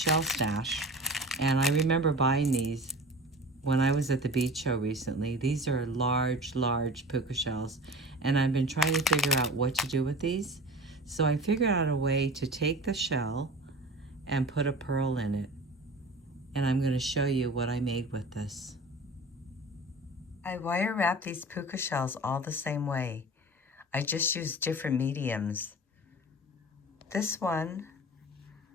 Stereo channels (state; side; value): normal; both; correlation 0.36